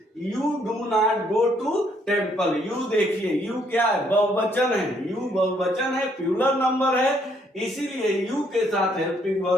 you do not go to temple. You देखिए यू क्या है बहुवचन है। यू बहुवचन है प्लूरल नंबर है इसीलिए यू के साथ हेल्पिंग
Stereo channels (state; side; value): normal; both; correlation 0.69